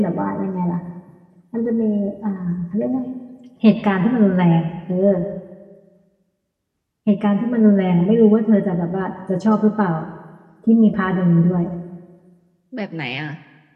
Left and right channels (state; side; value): identical; both; correlation 1.00